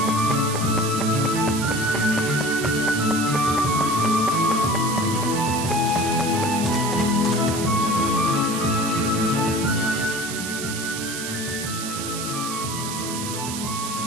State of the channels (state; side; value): noise; right; hiss, 6 dB below the sound